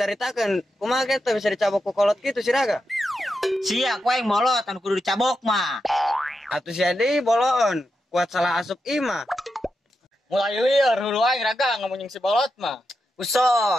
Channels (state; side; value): normal; both; correlation 0.87